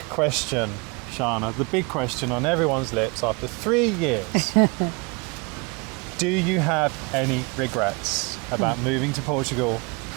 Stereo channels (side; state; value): left; quieter; 29.6 dB